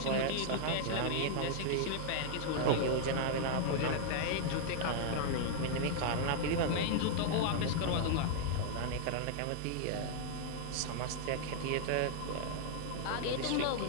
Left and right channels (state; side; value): different; both; correlation -0.01